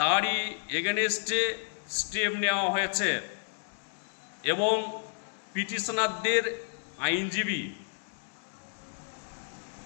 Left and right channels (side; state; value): right; silent; 57 dB below the other